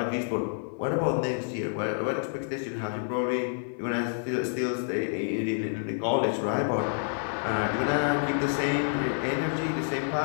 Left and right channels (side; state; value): right; silent; 59 dB below the other